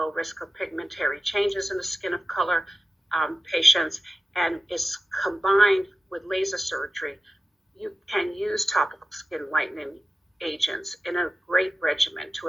risk of pigmentary changes in the skin of color patients and is combined with laser surgery. You can use topical skin lightening agents in a great regimen to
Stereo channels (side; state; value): both; normal; correlation 0.94